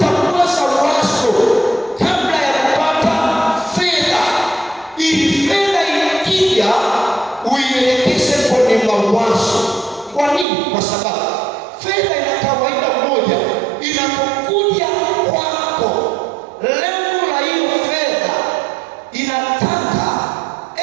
kwanza wazo kabla ya kupata fedha, ili fedha ikija nini? Kwa sababu fedha ina kawaida moja, inapokuja kwako, lengo la hiyo fedha inataka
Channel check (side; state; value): left; drops out; at 10.5 s